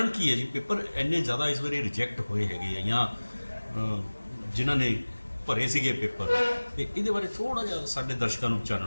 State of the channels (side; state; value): both; inverted; correlation -1.00